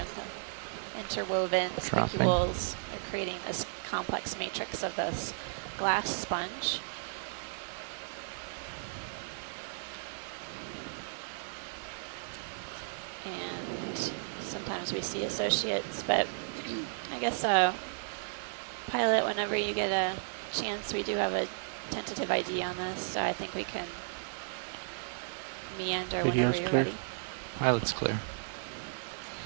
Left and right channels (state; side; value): silent; left; digital silence